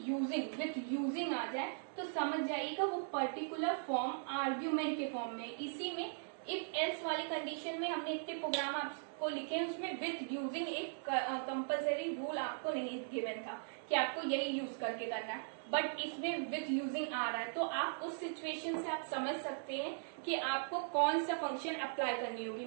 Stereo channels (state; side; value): silent; left; digital silence